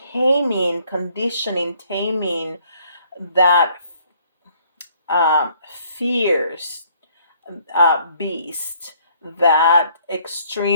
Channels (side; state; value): both; inverted; correlation -0.62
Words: taming, conditioning, taming that fierce beast, that